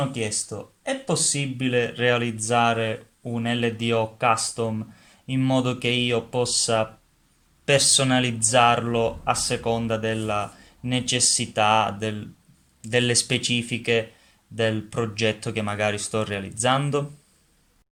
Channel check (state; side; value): identical; both; correlation 1.00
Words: chiesto, è possibile realizzare un LDO custom in modo che io possa personalizzarlo a seconda della necessità, delle specifiche del progetto che magari sto realizzando?